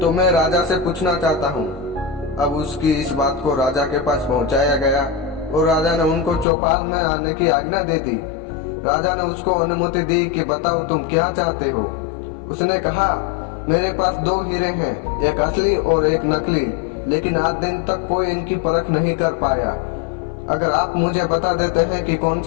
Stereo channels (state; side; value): drops out; right; at 6.5 s